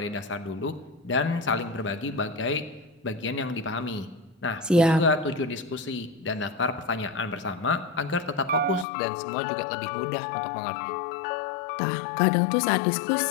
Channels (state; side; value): drops out; right; at 8.8 s